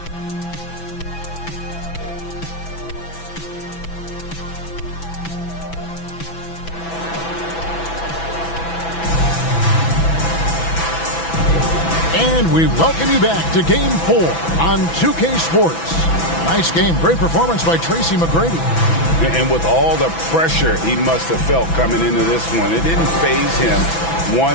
And we welcome you back to Game 4 on 2K Sports. Nice game. Great performance by Tracy McGrady. And with all the pressure he must have felt coming into this one, it didn't faze him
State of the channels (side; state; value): right; late; 6.0 ms